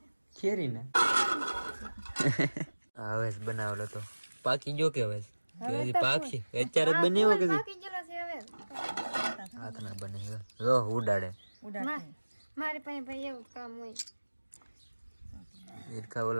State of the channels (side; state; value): both; inverted; correlation -1.00